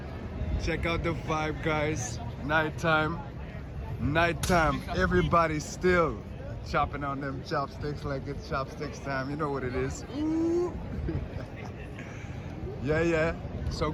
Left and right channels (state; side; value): identical; both; correlation 1.00